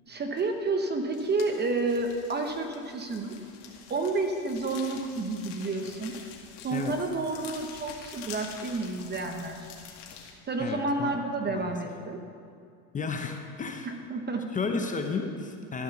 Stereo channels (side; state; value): both; normal; correlation 0.30